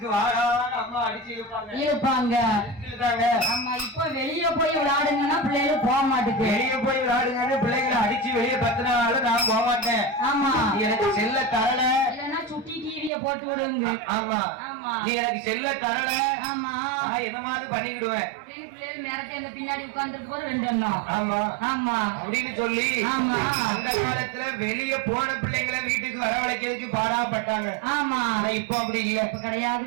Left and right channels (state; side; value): drops out; left; at 13.1 s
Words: வாடான்னு அம்மா அடிச்சு இழுப்பாங்க. இப்ப வெளியே போய் விளையாடுங்கன்னா பிள்ளைகள் போக மாட்டேங்க. வெளியே போய் விளையாடுங்க பிள்ளைகளை அடிச்சு வெளியே பத்தினாலும் நான் போக மாட்டேன். எனக்கு செல்ல தரல இல்லன்னா சுட்டி டிவிய போட்டு விடுங்க. நீ எனக்கு செல்ல தரல என்ன மாதிரி பண்ணிக்கிடுவேன் பின்னாடி உட்கார்ந்து 2 எண்ணம் அப்படின்னு சொல்லி அந்த காலத்துல வெளியே போன பிள்ளைங்களை வீட்டுக்கு வரவழைக்கிறதுக்கு பாடாப்பட்டாங்க. இப்ப அப்படி இல்ல.